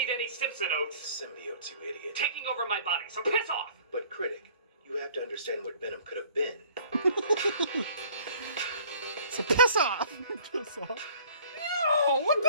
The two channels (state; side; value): inverted; both; correlation -0.53